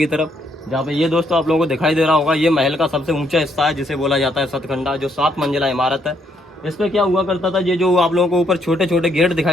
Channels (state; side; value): normal; both; correlation 0.72